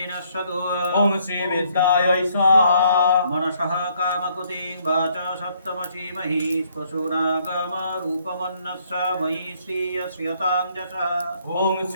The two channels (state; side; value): inverted; both; correlation -0.68